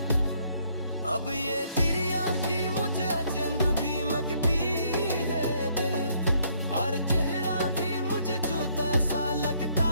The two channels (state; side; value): inverted; both; correlation -0.68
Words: अब ये तेरी आँखी मुझे अचंभ भी मकती है दिल, और चेहरा भी मुझे जूता सा लगता